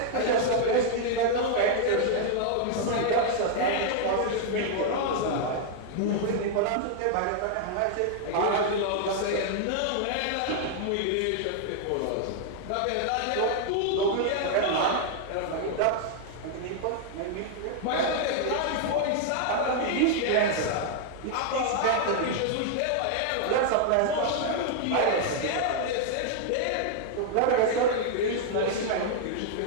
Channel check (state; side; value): different; both; correlation 0.00